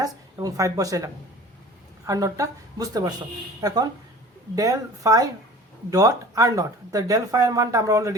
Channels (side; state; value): both; normal; correlation 0.43